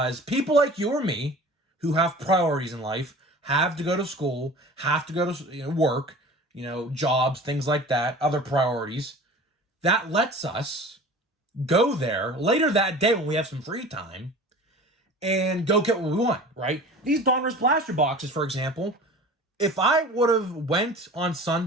people like you or me who have priorities in life have to go to school, have to go to work, jobs, things like that, other priorities. That lets us go there later that day when we have some free time and go get what we want, right? These Donruss Blaster boxes, for example, if I would have went on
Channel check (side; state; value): both; normal; correlation 0.40